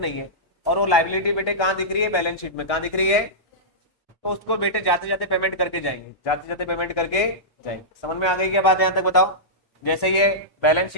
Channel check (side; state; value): both; normal; correlation -0.14